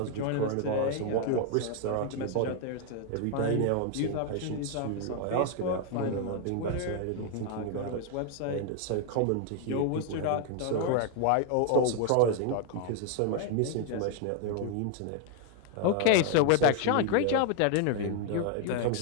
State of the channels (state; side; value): different; both; correlation 0.00